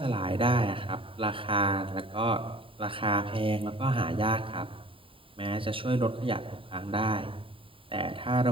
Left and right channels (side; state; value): left; late; 0.25 ms